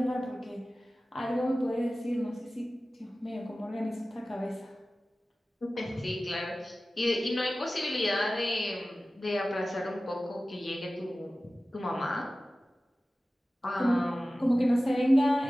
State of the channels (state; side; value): normal; both; correlation 0.96